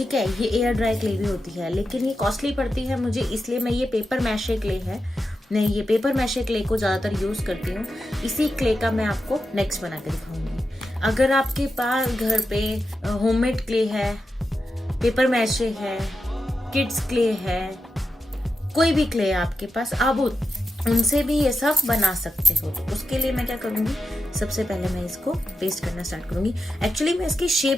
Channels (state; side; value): normal; both; correlation 0.88